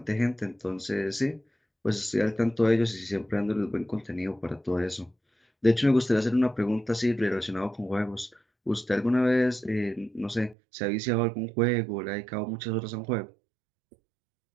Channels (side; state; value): left; drops out; at 10.6 s